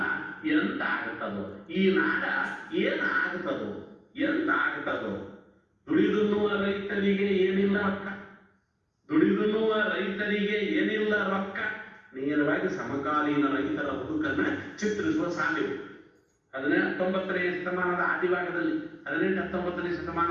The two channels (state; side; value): identical; both; correlation 1.00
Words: ಎಂತ ಆಗತ್ತದೋ ಈ ನಾಡ, ಏನ್ ಆಗತ್ತದೋ ಎಂತ ಆಗತ್ತದೋ, ದುಡಿದುನ್ನುವ ರೈತರಿಗೆ ಏನಿಲ್ಲ ರೊಕ್ಕ, ದುಡಿದುನ್ನುವ ರೈತರಿಗೆ ಏನಿಲ್ಲ ರೊಕ್ಕ. ನೇರವಾಗಿ ಸಮಕಾಲೀನ ರೈತರ ಬದುಕನ್ನ ಚಿತ್ರಿಸುವ ಸಾಲಿವೆ. 19ನೇ ಶತಮಾನದ ಆದಿಭಾಗದಲ್ಲಿ, 18-19ನೇ